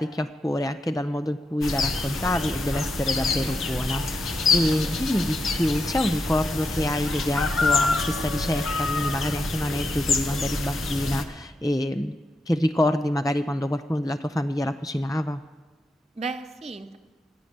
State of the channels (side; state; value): both; normal; correlation 0.84